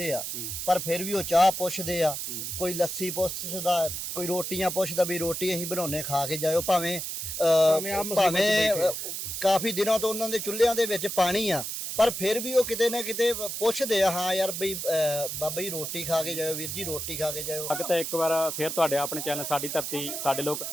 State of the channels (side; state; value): right; noise; hiss, 5 dB below the sound